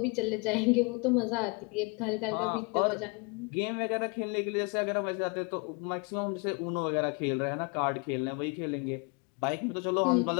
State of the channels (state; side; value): quieter; right; 31.5 dB